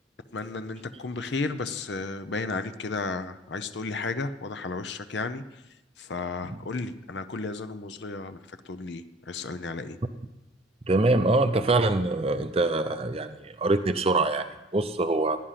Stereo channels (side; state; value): both; normal; correlation 0.47